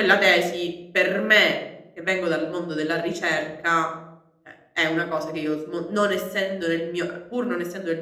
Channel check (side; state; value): both; identical; correlation 1.00